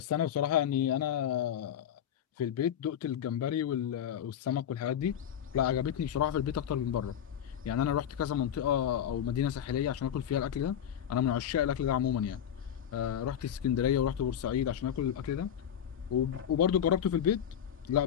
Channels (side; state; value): right; quieter; 9.5 dB